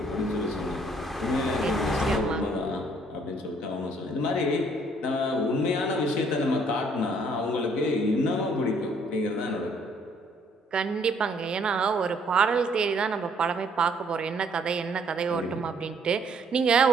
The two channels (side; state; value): both; normal; correlation 0.64